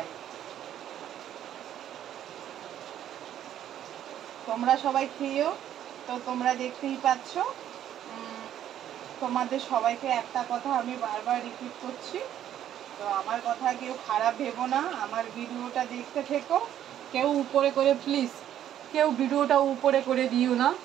তোমরা সবাই খেয়েও, তো তোমরা দেখতেই পাচ্ছ। তোমাদের সবাইকে একটা কথা আমি বারবার রিপিট করছি, তো আমার কথা কেউ খারাপ ভেবো না, আমার ভিডিওটা দেখতে থেকো। কেউ উপরে করে প্লিজ, কেউ ভিডিওটা উপরে করে দিও না,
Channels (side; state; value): left; quieter; 11.0 dB